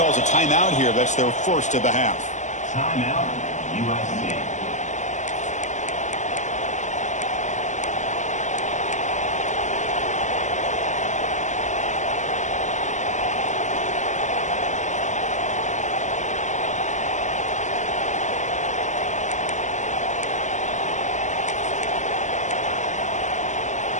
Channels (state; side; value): late; right; 0.35 ms